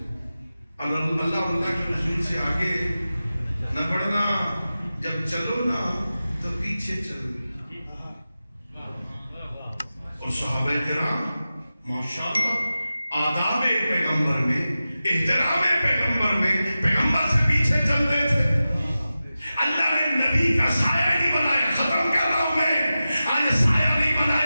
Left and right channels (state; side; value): inverted; both; correlation -0.94